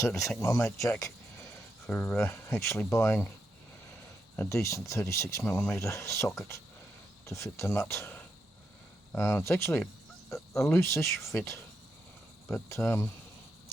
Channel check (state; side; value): normal; both; correlation 0.82